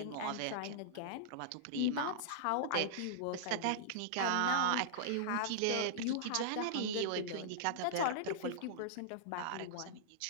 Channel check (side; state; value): both; different; correlation -0.02